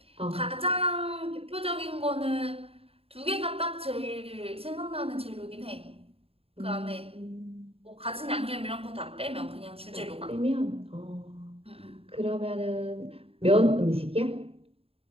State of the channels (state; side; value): late; left; 0.28 ms